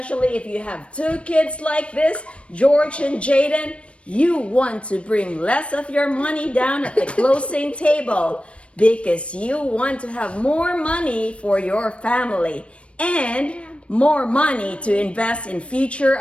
if you have two kids like this, George and Jaden, you want to bring less of your money down at the closing table because you want to have more money for your family and more money to invest in future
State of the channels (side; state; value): right; late; 0.061 ms